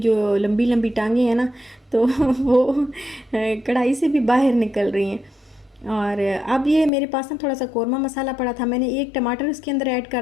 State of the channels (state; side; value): drops out; right; at 6.9 s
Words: लंबी लंबी टांगें हैं ना, तो वो कढ़ाई से भी बाहर निकल रही हैं। और अब ये मेरे पास ना थोड़ा सा कौरमा मसाला पड़ा था, मैंने एक टमाटर इसके अंदर ऐड